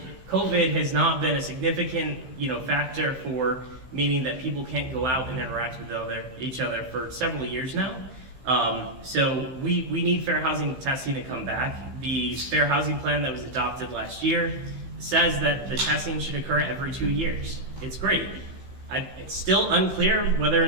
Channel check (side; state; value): left; late; 15 ms